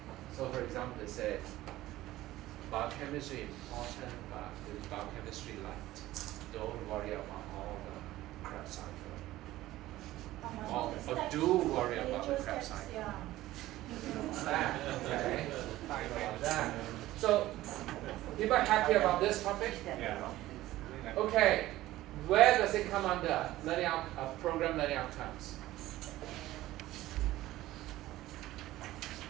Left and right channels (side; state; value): left; quieter; 16.0 dB